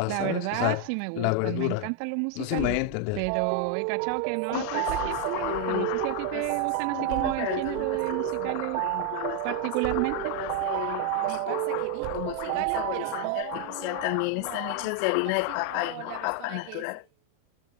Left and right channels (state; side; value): different; both; correlation 0.00